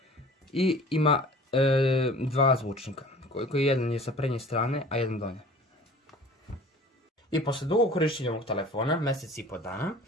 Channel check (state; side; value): normal; both; correlation 0.45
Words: i ima dva zvučnika, koji jedan je sa prednje strane, a jedan donje. I posle dugog korištenja ovog telefona, mjesec i po dana,